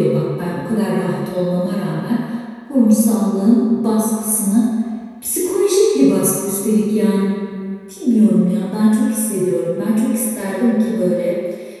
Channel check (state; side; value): identical; both; correlation 1.00